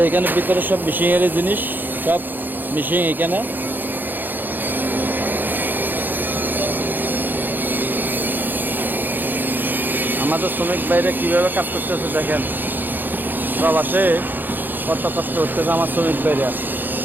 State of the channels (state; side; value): late; left; 0.089 ms